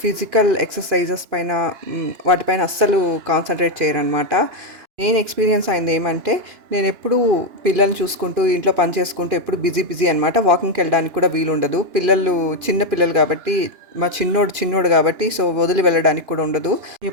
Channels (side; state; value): left; late; 2.9 ms